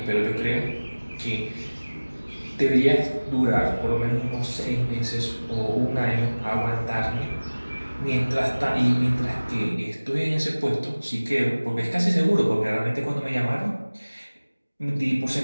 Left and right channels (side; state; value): both; inverted; correlation -1.00